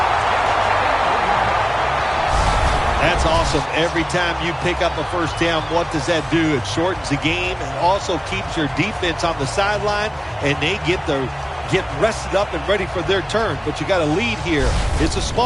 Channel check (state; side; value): identical; both; correlation 1.00